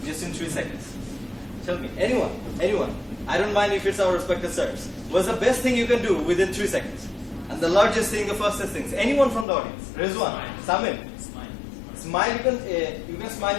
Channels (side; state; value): right; drops out; at 9.5 s